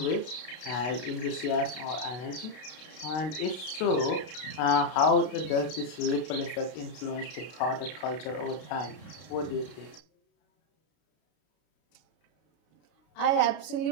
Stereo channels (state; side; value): late; right; 32 ms